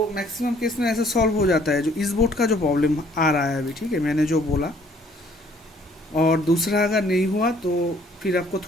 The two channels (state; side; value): normal; both; correlation 0.60